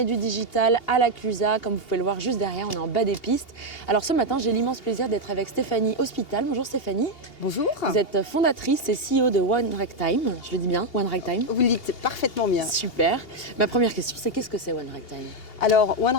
du digital à la Clusa. Comme vous pouvez le voir juste derrière, on est en bas des pistes. Alors ce matin, j'ai l'immense plaisir d'être avec Stéphanie Hospital. Bonjour Stéphanie. Bonjour. Vous êtes fondatrice et CEO de One Ragtime. Je le dis bien, One Ragtime. Vous le dites parfaitement bien. Super. Ma première question, c'est qu'est-ce que c'est One Ragtime? Alors, One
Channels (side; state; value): right; late; 2.8 ms